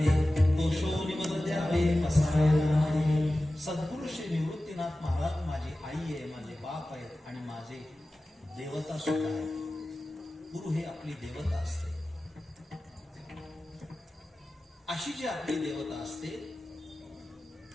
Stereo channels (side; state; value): both; normal; correlation 0.95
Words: दोषो निमद द्यावे पसायदाने. सद्गुरु श्री निवृत्तीनाथ महाराज माझी आई आहे, माझे बाप आहेत आणि माझे देवता सुद्धा आहे. गुरु हे आपली देवता असते. अशी जी आपली देवता असते